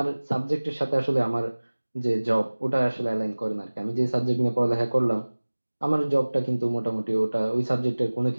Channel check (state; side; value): inverted; both; correlation -1.00